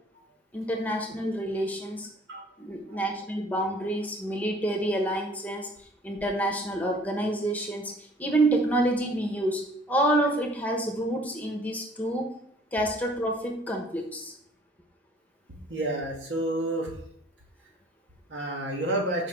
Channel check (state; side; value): normal; both; correlation 0.54